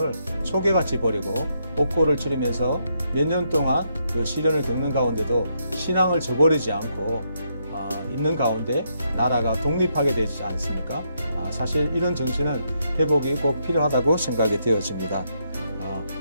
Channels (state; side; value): inverted; both; correlation -0.78